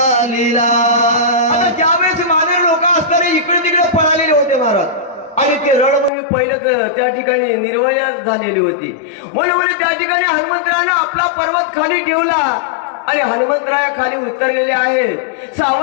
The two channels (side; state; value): right; drops out; at 6.1 s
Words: आता ज्यावेळेस वानर लोक असणारे इकडे तिकडे पळालेले होते महाराज आणि ते रणभूमी पहिलेच त्या ठिकाणी निर्वयास झालेली होती. म्हणून त्या ठिकाणी हनुमंतरायाने आपला पर्वत खाली ठेवला आणि हनुमंतराया खाली उतरलेले आहे.